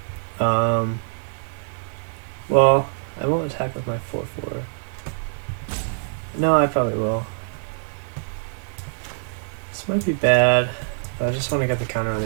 Well, I won't attack with my 4/4. No, I probably will. This might be bad, but I just want to get the counter on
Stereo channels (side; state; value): left; silent; 63 dB below the other